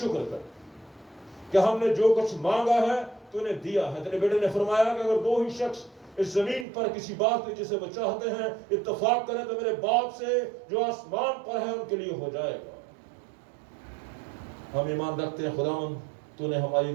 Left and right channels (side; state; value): left; drops out; at 6.7 s